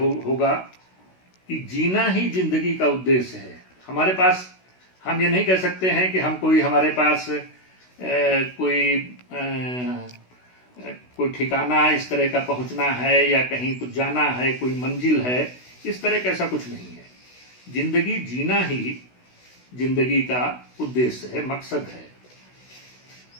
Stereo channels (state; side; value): late; right; 16 ms